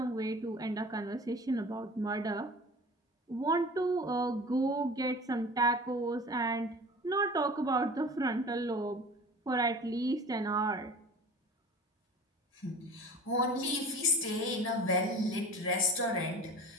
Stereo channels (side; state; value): both; normal; correlation 0.39